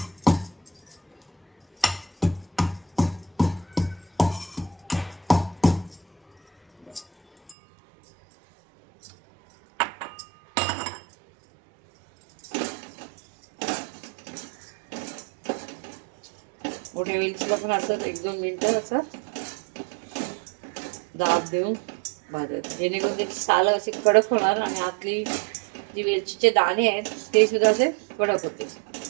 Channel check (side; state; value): left; drops out; at 7.6 s